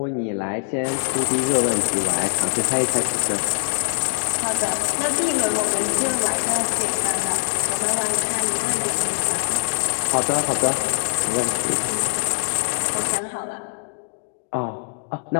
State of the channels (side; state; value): right; silent; digital silence